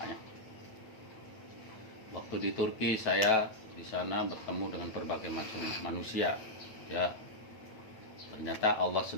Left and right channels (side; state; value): right; late; 8.9 ms